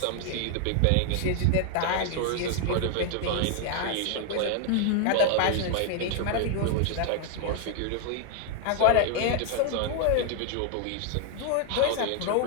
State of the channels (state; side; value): different; both; correlation 0.00